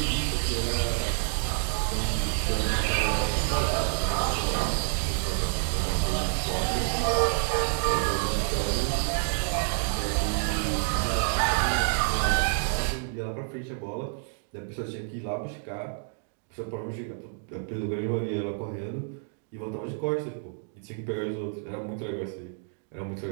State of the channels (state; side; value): silent; left; 59 dB below the other